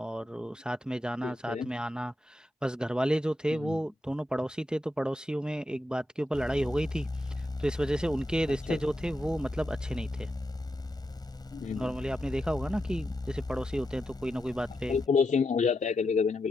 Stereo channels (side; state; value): both; normal; correlation 0.86